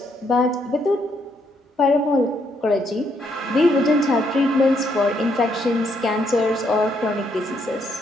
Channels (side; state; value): both; normal; correlation 0.73